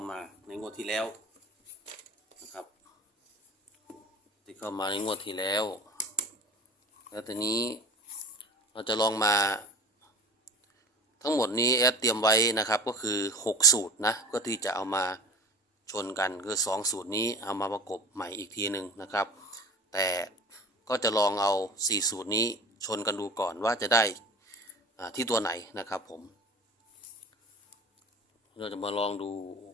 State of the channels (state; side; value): normal; both; correlation 0.38